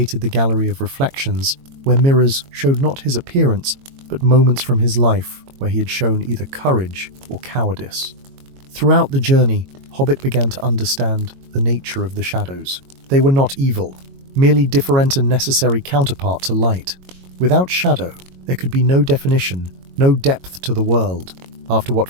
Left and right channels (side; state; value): left; late; 22 ms